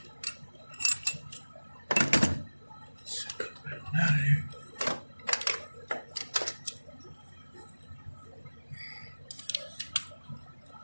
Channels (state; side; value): inverted; both; correlation -1.00